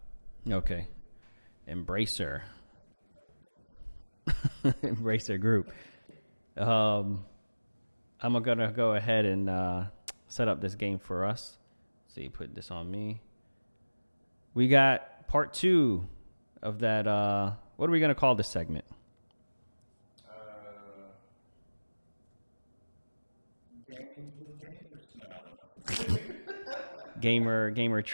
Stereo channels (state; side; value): inverted; both; correlation -1.00